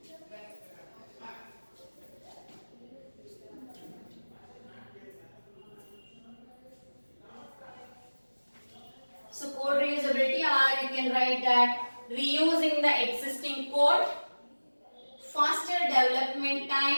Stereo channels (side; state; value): both; inverted; correlation -1.00